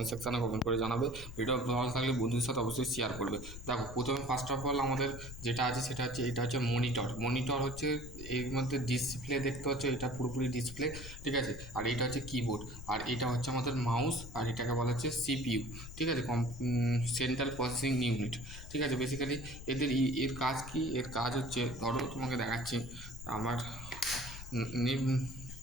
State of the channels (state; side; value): noise; left; rumble, 12 dB below the sound